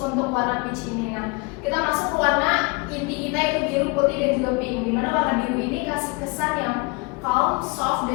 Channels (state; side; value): quieter; right; 27.0 dB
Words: warna peach ini. Nah, kita masuk ke warna inti kita yaitu biru, putih dan juga pink. Dimana warna biru ini kasih kesan yang calm, soft